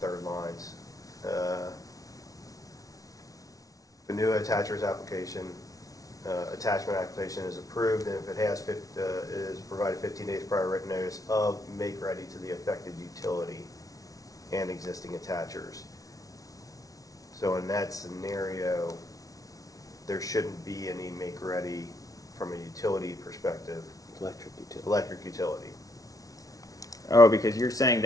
lines. The new attachers application, attachment application is approved, and if it has, is provided 15 days prior written notice of make ready to the affected utility and existing attachers. So in that scenario, there shouldn't be any make ready from a utility perspective, electric utility. Oh, because you're saying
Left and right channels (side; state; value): right; late; 0.18 ms